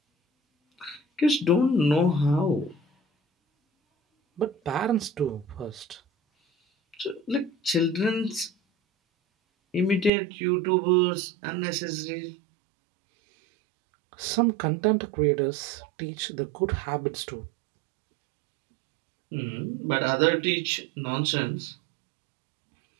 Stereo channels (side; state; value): left; drops out; at 10.1 s